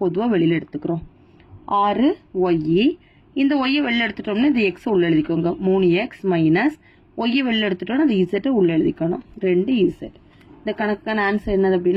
வெளியில எடுத்துக்கிறோம். 6y. இந்த y வெளியில எடுத்துட்டோம்னா இந்த x உள்ள எழுதிக்கோங்க. 3x மைனஸ் y வெளியில எடுத்துட்டோம்னா அந்த z உள்ள எழுதிக்கணும். 2z. இந்த கணக்குக்கான ஆன்சர் என்னது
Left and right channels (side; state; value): both; identical; correlation 1.00